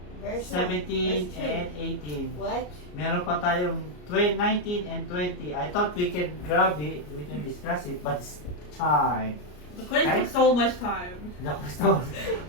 Verse 17, 1. and 18. What? Meron pa tayong 19 and 20. I thought we can grab it, we can discuss it, but it's time. The quiz Right? took so much time. The question.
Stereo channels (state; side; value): late; right; 33 ms